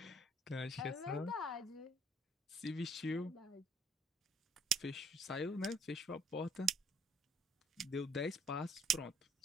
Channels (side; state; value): both; normal; correlation 0.62